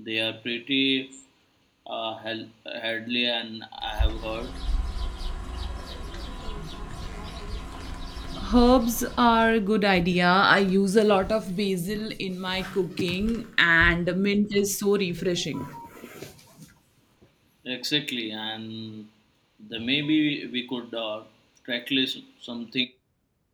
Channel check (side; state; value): both; identical; correlation 1.00